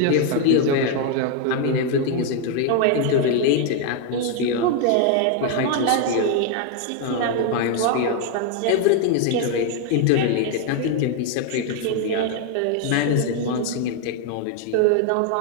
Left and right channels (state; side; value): different; both; correlation 0.01